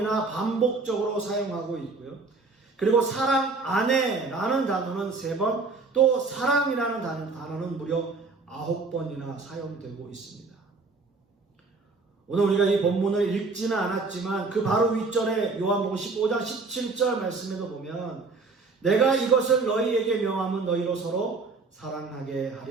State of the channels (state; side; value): quieter; left; 4.0 dB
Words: 반복적으로 사용하고 있고요. 그리고 사랑 안에라는 단어는 3번, 또 사랑이라는 단어는 무려 9번이나 사용되고 있습니다. 오늘 우리가 이 본문을 읽지는 않았지만 그 바로 윗절에 요한복음 15장 17절 말씀에도 보면 내가 이것을 너희에게 명함은 너희로 서로 사랑하게